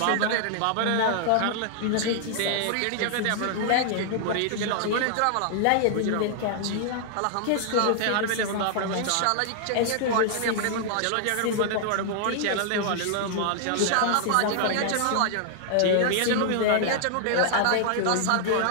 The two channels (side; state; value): both; different; correlation -0.01